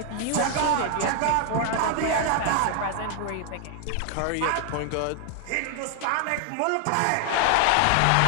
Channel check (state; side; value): different; both; correlation 0.00